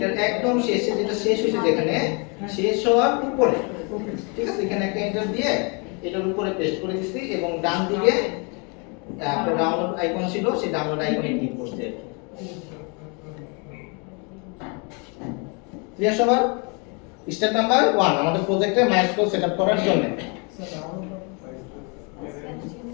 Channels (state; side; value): quieter; right; 32.7 dB